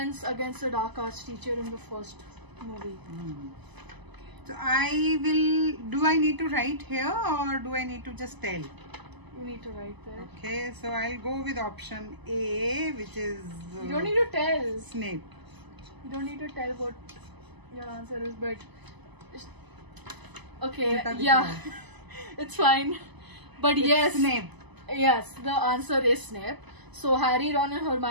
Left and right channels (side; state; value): left; late; 1.0 ms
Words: against the Dark Arts teacher in the first movie. So do I need to write here or do I need to just tell? You need to write there. Okay, so I'll go with option A, which is... you don't need to tell. Snape. You don't need to tell what your answer is, but... okay, yeah, it's fine. But it's yes, Snape. Yes, the answer is Snape. So Harry, Ron and